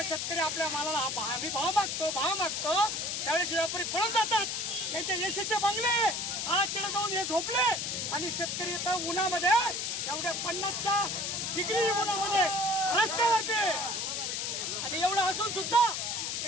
शेतकरी आपल्या मालाला आम्ही भाव मागतो त्यावेळेस व्यापारी पळून जातात. त्यांचे एसीचे बंगले आज तिथे जाऊन हे झोपले आणि शेतकरी इथं उन्हामध्ये एवढ्या 50च्या डिग्री उन्हामध्ये रस्त्यावरती. आणि एवढं असून सुद्धा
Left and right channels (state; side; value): noise; left; hiss, 2 dB below the sound